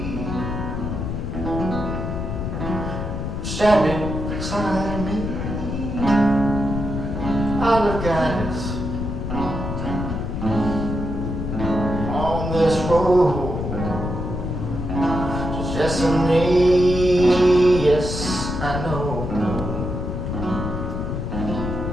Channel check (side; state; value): left; noise; rumble, 4 dB below the sound